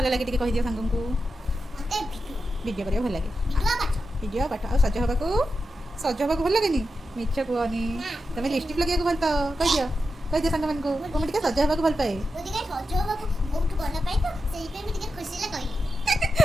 ଲାଗେ ଟିକେ କହିଦିଅ ସାଙ୍ଗଙ୍କୁ ମତେ ଭିଡ଼ିଓ କରିବାକୁ ଭଲ ଲାଗେ ଭିଡ଼ିଓ ପାଠ ଆଉ ସଜ ହେବାକୁ ଭଲ ଲାଗେନି ମିଛ କୁହନି ତମେ ଲିପଷ୍ଟିକ୍ ଲଗେଇବାକୁ ଭଲ ପାଅ କହିଦିଅ ସାଙ୍ଗମାନଙ୍କୁ ମୁଁ ଟିକେ ସଜ ହେବାକୁ ଭଲ ପାଏ ମୁଁ ଟିକେ ସଜ ହବାକୁ ବହୁତ ଭଲ ପାଏ ତ ସେଇପାଇଁ ମୁଁ ଟିକେ ଖୁସିରେ କହିଲି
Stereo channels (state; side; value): normal; both; correlation 0.89